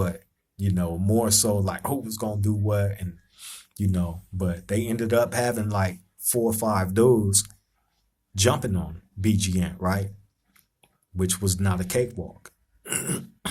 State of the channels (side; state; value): both; identical; correlation 1.00